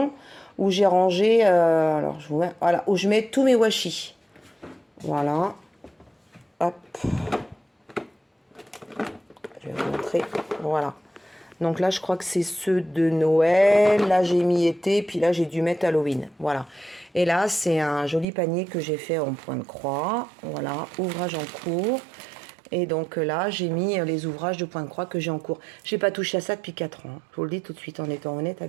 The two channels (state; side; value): drops out; left; at 18.2 s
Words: où j'ai rangé, alors je vous mets, voilà, où je mets tous mes washi. Voilà. Hop. Je vais vous montrer. Voilà. Donc là, je crois que c'est ceux de Noël. Là, j'ai mis été, puis là, j'ai dû mettre Halloween. Voilà. Et là, c'est un joli panier que j'ai fait en point de croix. Voilà, ouvrage en cours. Et donc là, j'ai mis les ouvrages de point de croix que j'ai en cours. J'ai pas touché à ça depuis 4 ans. Je vous le dis tout de suite en étant honnête